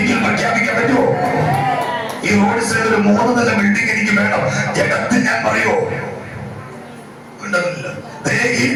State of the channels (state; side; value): identical; both; correlation 1.00